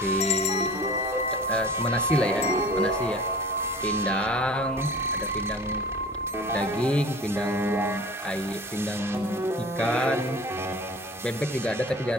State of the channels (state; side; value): normal; both; correlation 0.42